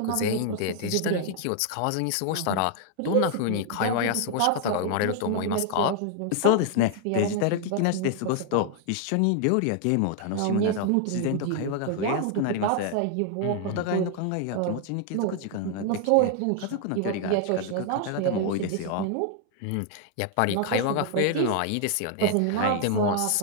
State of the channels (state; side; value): different; both; correlation 0.00